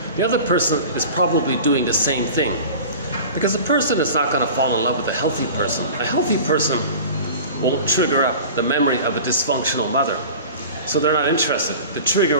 the other person is probably doing the same thing. Because a person is not going to fall in love with a healthy person. A healthy person won't trigger up the memory of a dysfunctional mother. So they're not interested. The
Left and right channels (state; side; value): inverted; both; correlation -0.37